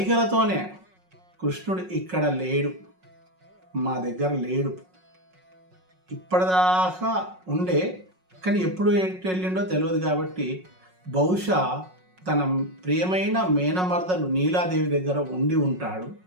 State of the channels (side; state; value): left; late; 5.5 ms